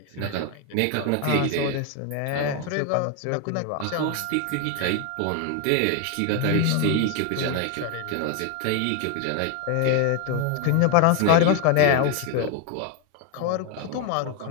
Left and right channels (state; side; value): different; both; correlation 0.01